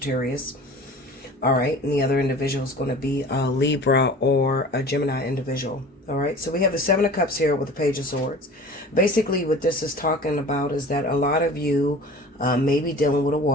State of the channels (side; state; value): both; normal; correlation 0.41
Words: All right, and the other individual is going to be a Libra or a Gemini individual. All right, so we have the Seven of Cups here with the Page of Swords. Basically, what this is talking about is that a lot of you may be dealing with a